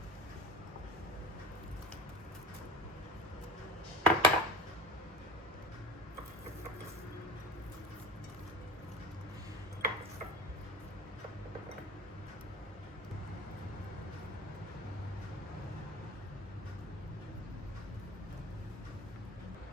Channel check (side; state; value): both; normal; correlation 0.34